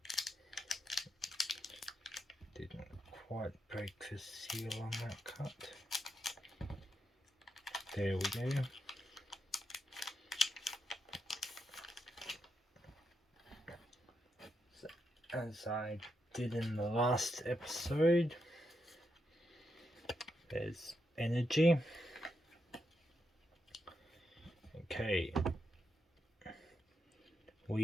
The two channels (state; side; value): normal; both; correlation 0.83